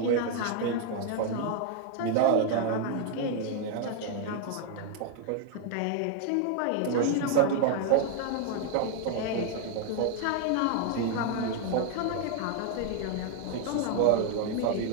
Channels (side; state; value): both; different; correlation 0.00